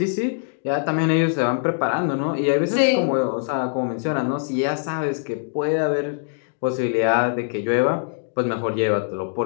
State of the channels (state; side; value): silent; right; digital silence